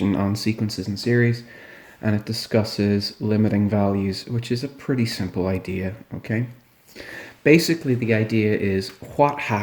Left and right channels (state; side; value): identical; both; correlation 1.00